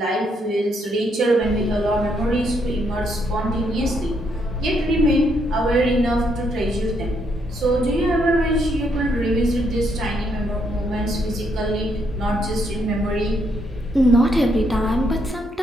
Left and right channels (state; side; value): normal; both; correlation 0.74